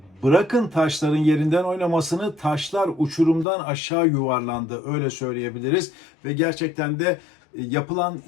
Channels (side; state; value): right; drops out; at 3.5 s